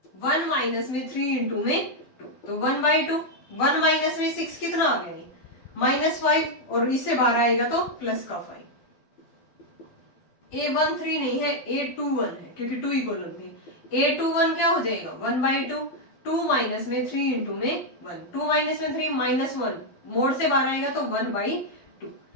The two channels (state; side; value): late; right; 12 ms